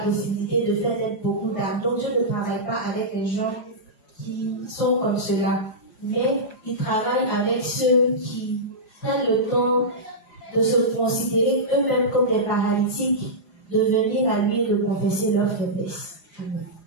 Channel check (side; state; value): right; late; 4.9 ms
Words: possibilité de faire naître beaucoup d'âmes. Donc Dieu ne travaille pas avec les gens qui sont comme cela. Mais il travaille avec ceux qui prennent le temps de se considérer eux-mêmes comme des paralytiques, de venir à lui et de confesser leur faiblesse. Amen.